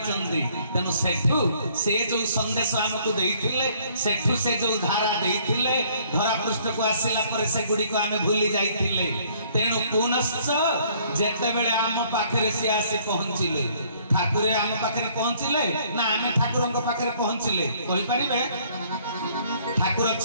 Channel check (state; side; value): inverted; both; correlation -0.62